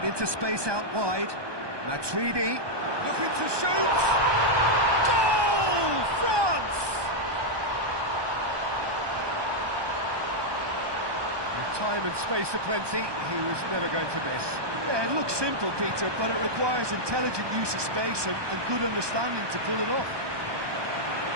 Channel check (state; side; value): late; left; 1.2 ms